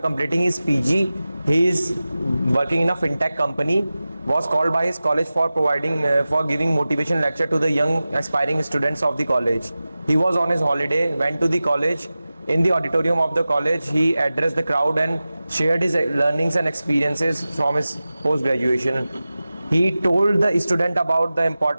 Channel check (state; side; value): inverted; both; correlation -0.96